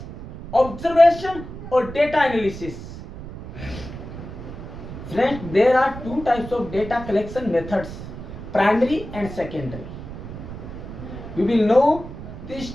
observation or data analysis. Friends, there are two types of data collection methods, primary and secondary. We will know these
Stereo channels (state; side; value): noise; right; rumble, 11 dB below the sound